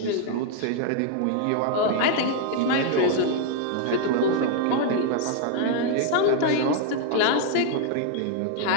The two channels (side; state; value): both; different; correlation 0.00